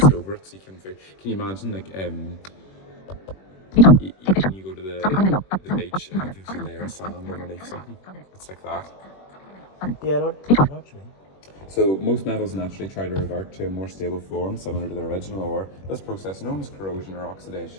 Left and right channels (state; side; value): late; right; 21 ms